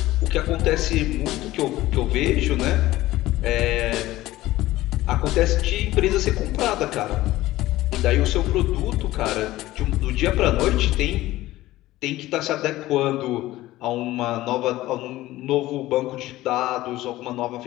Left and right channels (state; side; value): quieter; right; 16.6 dB